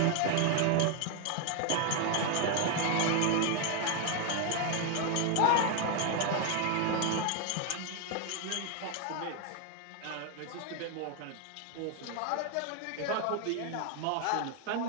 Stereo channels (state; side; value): different; both; correlation 0.01